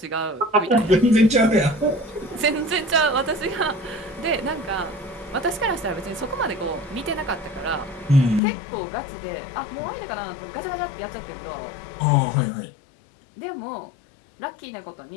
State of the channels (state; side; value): drops out; right; at 8.4 s